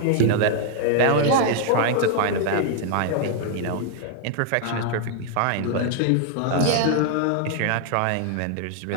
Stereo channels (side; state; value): both; different; correlation 0.00